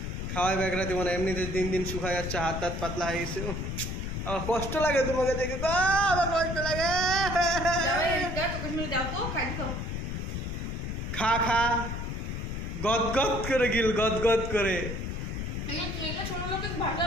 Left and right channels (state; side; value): noise; left; rumble, 4 dB below the sound